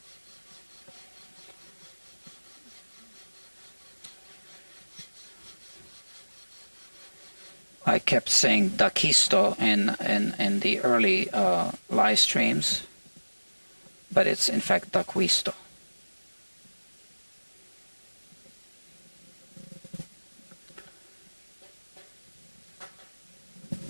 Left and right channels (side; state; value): both; inverted; correlation -1.00